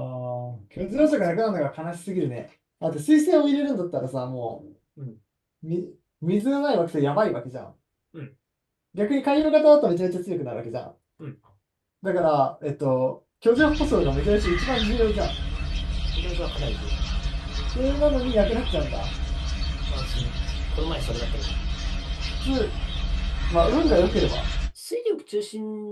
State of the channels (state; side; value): identical; both; correlation 1.00